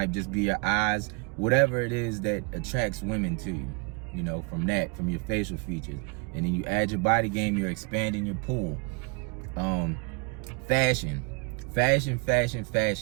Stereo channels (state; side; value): quieter; left; 33.8 dB